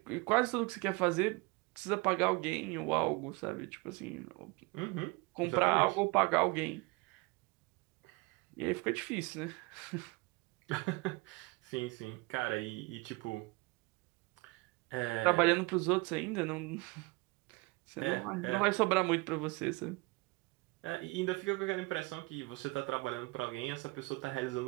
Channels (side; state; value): left; quieter; 25.8 dB